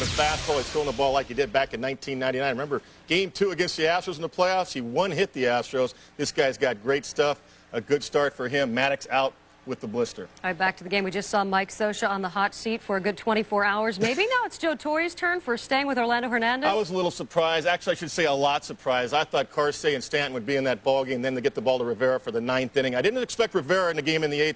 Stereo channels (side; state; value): both; identical; correlation 1.00